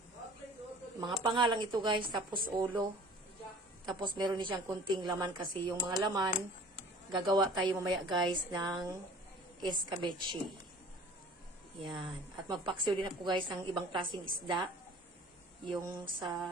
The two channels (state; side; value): normal; both; correlation 0.47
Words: Mga panga lang ito, guys. Tapos, ulo. Tapos, meron din siyang kunting laman kasi yung mga laman, gagawa tayo mamaya, guys, ng escabeche. Yan. At magpaksiw din ako, guys, ng ibang klaseng isda. Yung